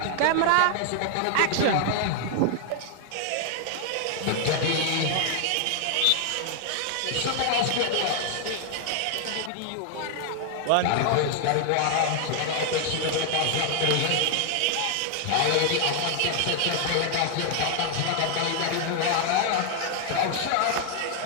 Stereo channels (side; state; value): both; different; correlation 0.00